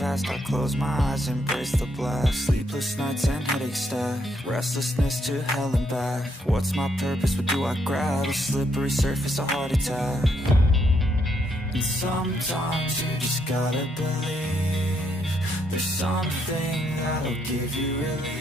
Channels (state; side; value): normal; both; correlation 0.75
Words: I close my eyes, embrace the blast. Sleepless nights and headaches stack. Restlessness to hell and back. What's my purpose? What do I grab? A slippery surface, a heart attack. And sometimes you just gotta believe there's something that'll give you